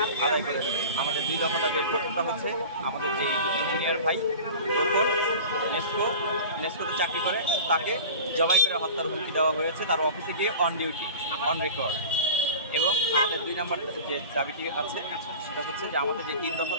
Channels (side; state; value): both; inverted; correlation -0.37